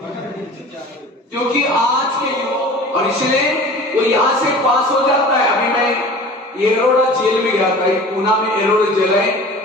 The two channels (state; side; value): normal; both; correlation 0.41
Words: क्योंकि आज के युवा, और इसलिए वो यहां से पास हो जाता है। अभी मैं एरोड़ा जेल में गया था, पूना में एरोड़ा जेल है,